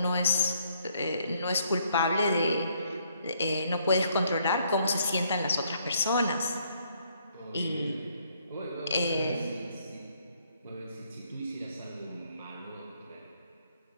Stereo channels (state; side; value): inverted; both; correlation -0.69